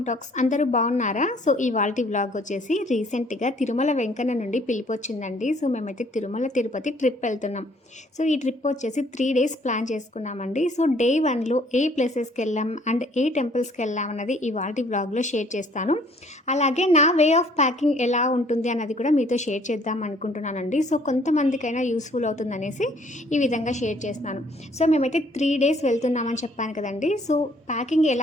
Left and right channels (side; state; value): both; normal; correlation 0.60